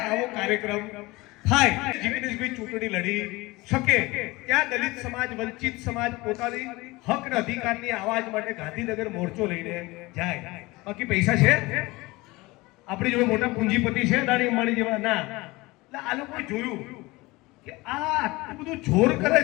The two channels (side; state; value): right; quieter; 21.9 dB